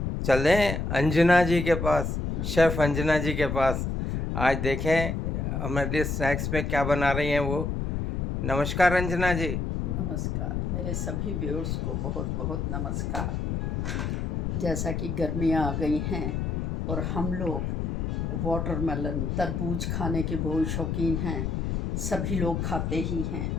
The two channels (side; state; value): left; noise; rumble, 1 dB below the sound